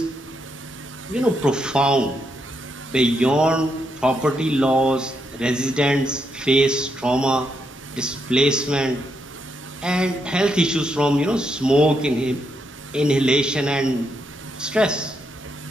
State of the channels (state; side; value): normal; both; correlation 0.80